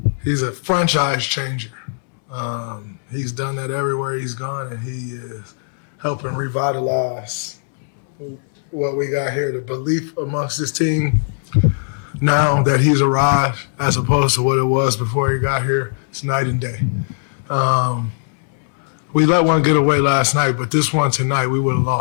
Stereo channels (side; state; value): right; silent; 66 dB below the other